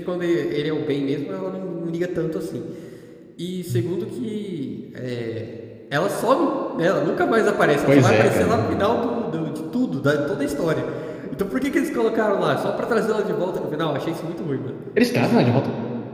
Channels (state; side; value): identical; both; correlation 1.00